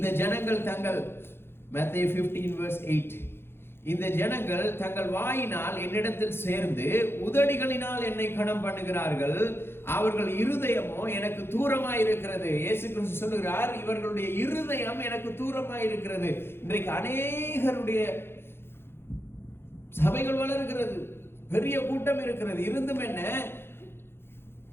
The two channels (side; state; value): right; late; 0.11 ms